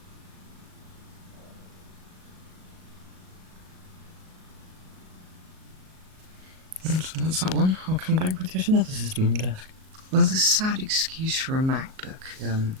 So that's that one. I'll come back with yet another system on the desk. Well, the sad excuse for a MacBook it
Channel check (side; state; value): left; late; 38 ms